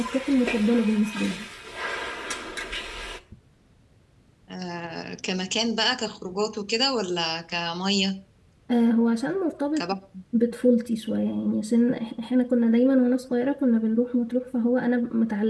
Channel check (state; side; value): identical; both; correlation 1.00